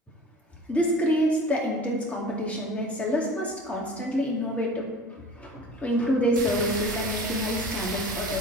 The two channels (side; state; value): both; normal; correlation 0.40